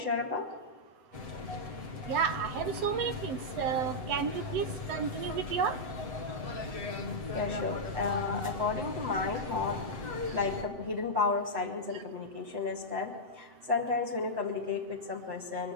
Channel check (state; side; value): late; left; 7.9 ms